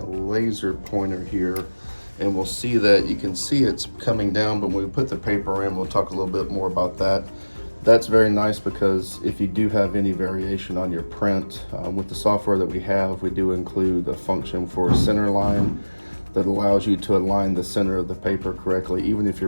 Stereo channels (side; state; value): both; inverted; correlation -1.00